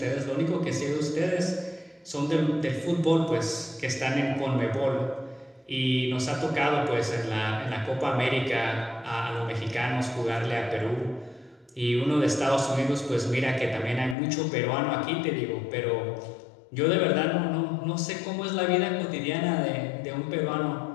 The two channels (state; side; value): drops out; right; at 14.2 s